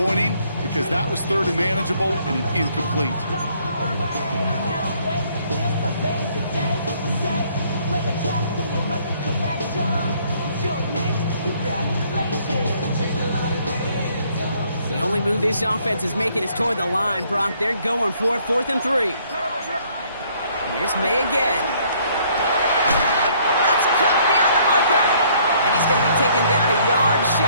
because that was 3rd and manageable and an incomplete. The only move this offense is making is toward the line, Brock. They're going for it, 4th and 3. Here's May again. That's cut beyond the marker. And he's going to be taken down a yard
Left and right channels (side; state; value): both; inverted; correlation -0.64